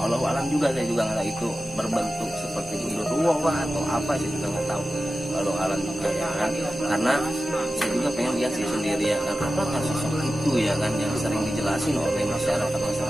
alam juga, saya juga nggak tahu itu berbentuk seperti genderuwo atau apa, saya juga nggak tahu, Allah alam juga ya kan, karena saya juga pengen lihat sih sendiri ya kan, apakah sosok itu ya kan yang sering dijelasin oleh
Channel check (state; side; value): normal; both; correlation 0.94